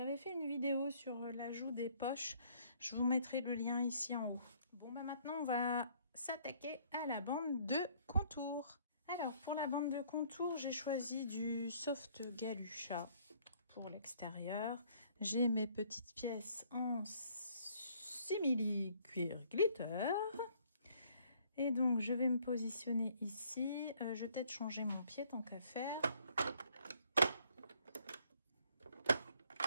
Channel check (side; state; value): both; inverted; correlation -0.62